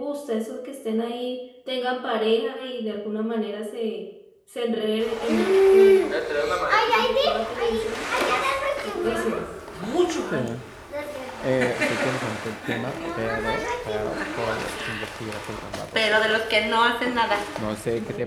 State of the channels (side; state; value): both; identical; correlation 1.00